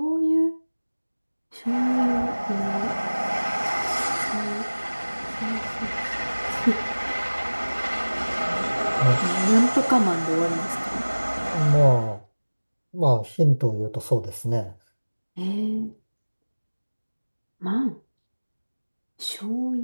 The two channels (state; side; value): inverted; both; correlation -1.00